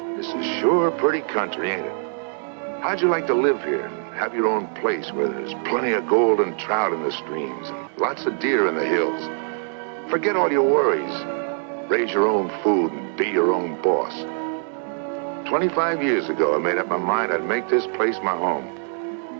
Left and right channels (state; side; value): silent; left; digital silence